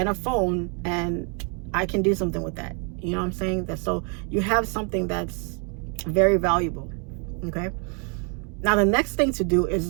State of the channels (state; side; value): quieter; left; 37.6 dB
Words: a phone, and I can do something with that. You know what I'm saying? So you have something that's very valuable. Okay. Now the next thing to do